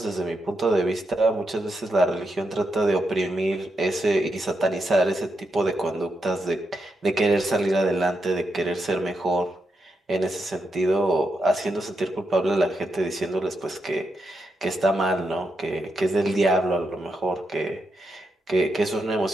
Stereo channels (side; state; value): both; normal; correlation 0.84